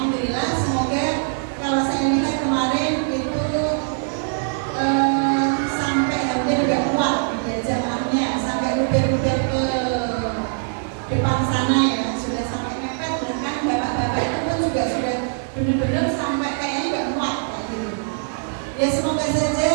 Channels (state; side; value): silent; left; digital silence